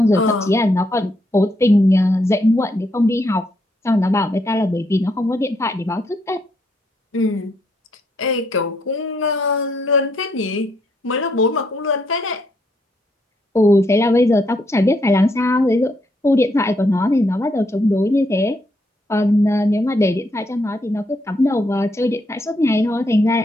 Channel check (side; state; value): both; normal; correlation 0.75